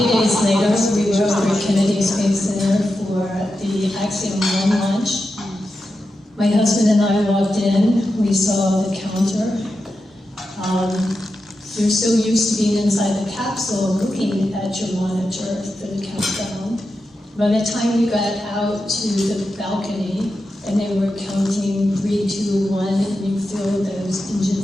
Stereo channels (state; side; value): normal; both; correlation 0.89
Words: days later, we were over at Kennedy Space Center for the Axiom 1 launch. My husband and I walked in, we saw the counter. You're so used to being inside the capsule, looking at your monitor for the countdown. By the time we got out to the balcony, and they were counting 3, 2, 1, and you feel those